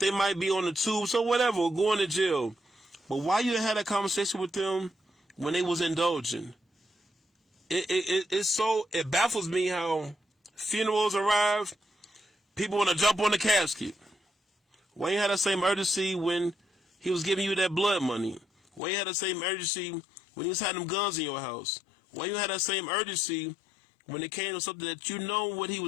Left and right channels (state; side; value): drops out; right; at 18.8 s